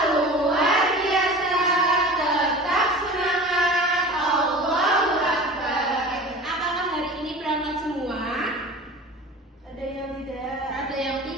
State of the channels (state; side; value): normal; both; correlation 0.37